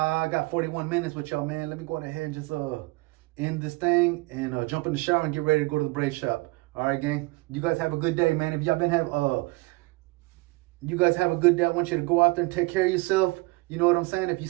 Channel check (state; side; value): quieter; left; 24.1 dB